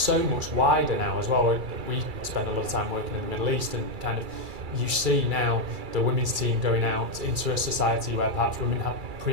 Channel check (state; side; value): late; left; 2.3 ms